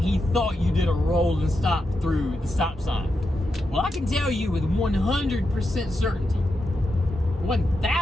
he thought you did a roll and stop through the stop sign. Well, I can tell you with 100% certainty,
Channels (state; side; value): normal; both; correlation 0.87